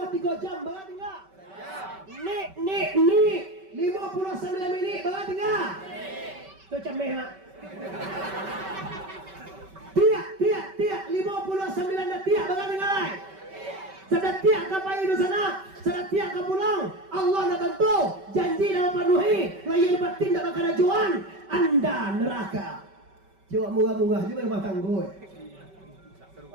jam bagan tinggal. Ni 59 minit bagan tinggal. Tu cameh mak. Tiak 59 dah tiak bagai dengar. Sedang tiak ke payu di sana, sedang tiak ke pulang. Allah nak bantu, janji dah penuhi. Layan batin tak bakal ajuan. Anda neraka. Coba murah-murah juga rumah tangga.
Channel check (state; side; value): late; left; 5.2 ms